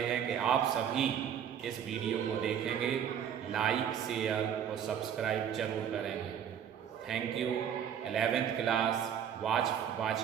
कि आप सभी इस वीडियो को देखेंगे, लाइक, शेयर और सब्सक्राइब जरूर करेंगे। Thank you 11th class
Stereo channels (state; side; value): quieter; left; 8.8 dB